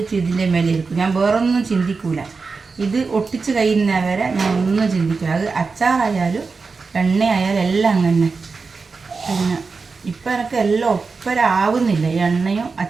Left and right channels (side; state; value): left; quieter; 4.5 dB